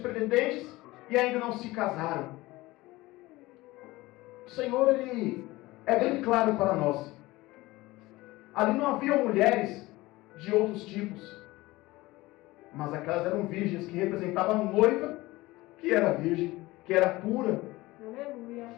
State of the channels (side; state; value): right; quieter; 19.7 dB